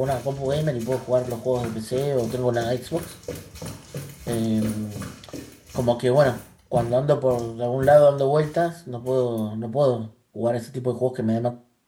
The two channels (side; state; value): both; identical; correlation 1.00